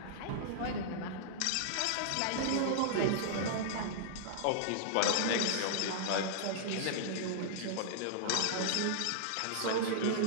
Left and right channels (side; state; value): both; different; correlation -0.01